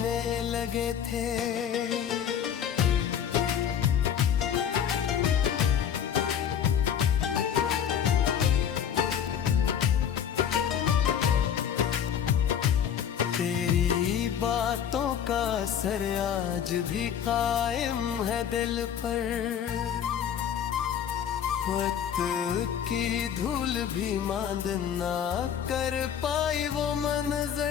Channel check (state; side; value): quieter; right; 8.8 dB